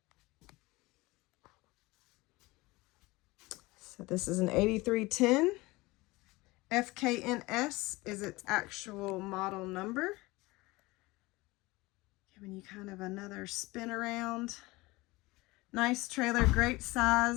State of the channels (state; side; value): quieter; right; 21.8 dB